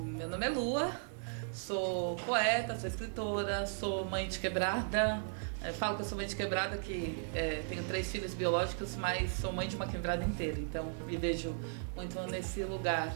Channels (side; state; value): left; silent; 54 dB below the other